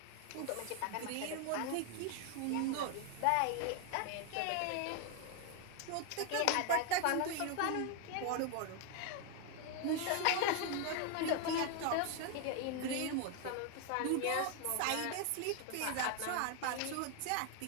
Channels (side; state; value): both; different; correlation 0.01